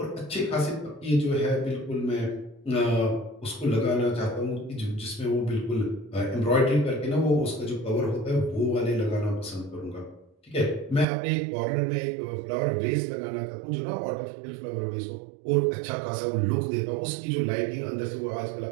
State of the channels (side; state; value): left; drops out; at 11.1 s